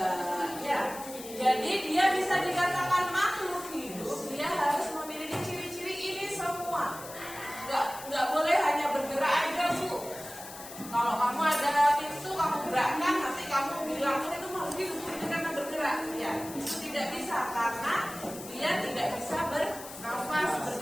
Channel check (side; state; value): left; noise; hiss, 14 dB below the sound